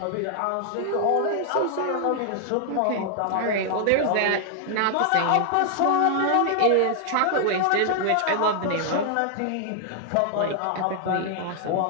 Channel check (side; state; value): both; different; correlation 0.00